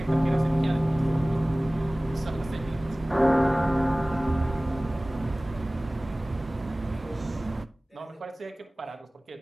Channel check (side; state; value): both; normal; correlation 0.98